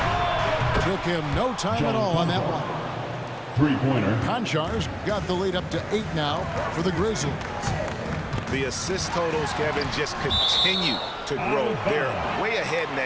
Took him no time at all on that one. Three-pointer. Konchar's got the lead up to 8 now for the Grizzlies. The assist totals, Kevin, just continue to grow. They're way ahead in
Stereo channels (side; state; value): both; identical; correlation 1.00